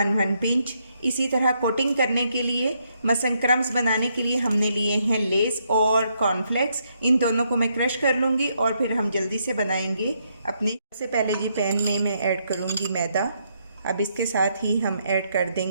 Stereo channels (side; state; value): both; inverted; correlation -0.76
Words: पिंच। इसी तरह कोटिंग करने के लिए, मसन क्रम्स बनाने के लिए हमने लिए हैं लेस और कॉर्नफ्लेक्स। इन दोनों को मैं क्रश कर लूँगी और फिर हम जल्दी से बनाएंगे अपने। सबसे पहले जी पैन में मैं ऐड करूँगी मैदा। अब इसके साथ ही हम ऐड कर